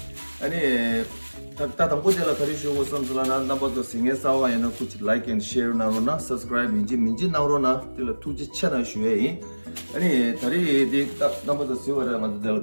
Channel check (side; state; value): both; inverted; correlation -1.00